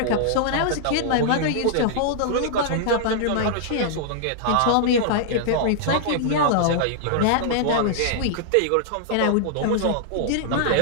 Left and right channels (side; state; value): both; different; correlation -0.01